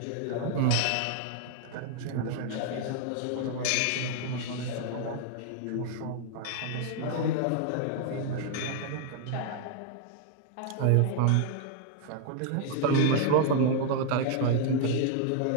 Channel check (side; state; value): both; different; correlation 0.00